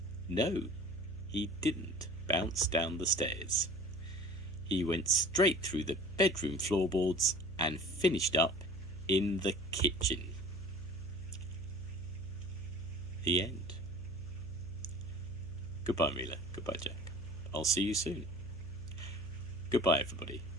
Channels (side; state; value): left; noise; hum, 12 dB below the sound